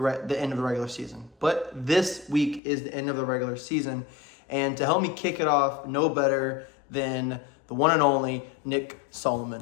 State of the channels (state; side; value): drops out; right; at 2.6 s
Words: end of the regular season. But this week is the end of the regular season. And to help me kick it off, no better than the one and only Nick